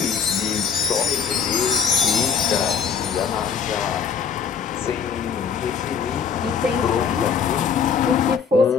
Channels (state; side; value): quieter; right; 6.6 dB